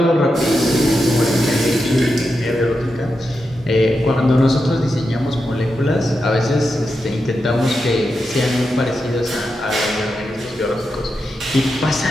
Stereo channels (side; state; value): both; normal; correlation 0.88